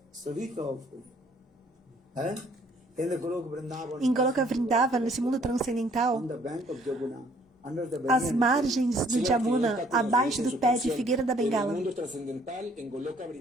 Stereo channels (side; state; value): both; normal; correlation 0.61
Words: Savika Ful. In the Golok Vrindavan, em Goloka Vrindavan, nesse mundo transcendental, on the bank of Jamuna, under the as banyan margens do Jamuna, abaixo do pé de figueira da En el Bengala. mundo trascendental, en Goloka